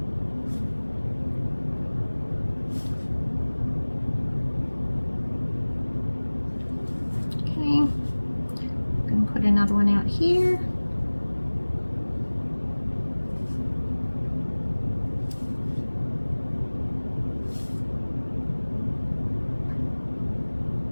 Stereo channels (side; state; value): both; inverted; correlation -1.00